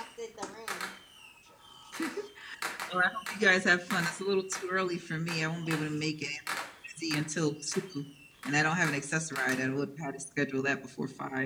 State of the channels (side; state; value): both; identical; correlation 1.00